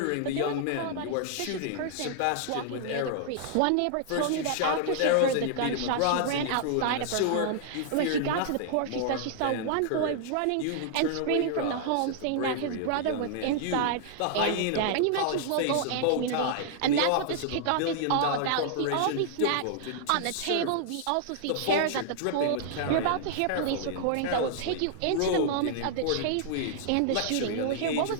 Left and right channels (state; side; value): different; both; correlation -0.01